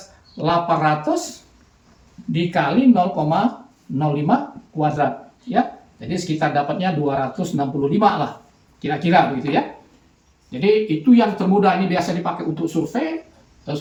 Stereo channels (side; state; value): both; identical; correlation 1.00